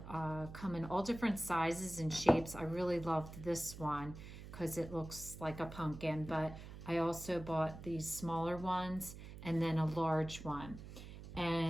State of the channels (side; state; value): right; noise; hum, 12 dB below the sound